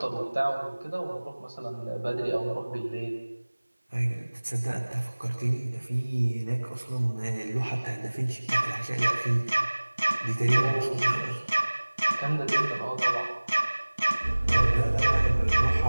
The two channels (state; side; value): inverted; both; correlation -1.00